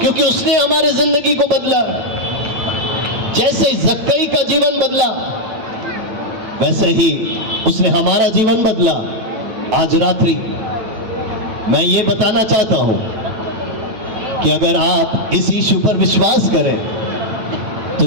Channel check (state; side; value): late; left; 9.0 ms